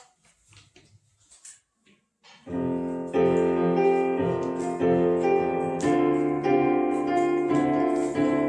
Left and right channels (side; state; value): both; identical; correlation 1.00